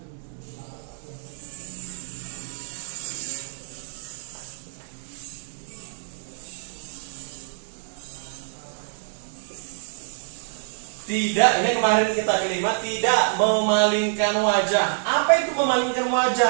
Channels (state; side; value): silent; left; digital silence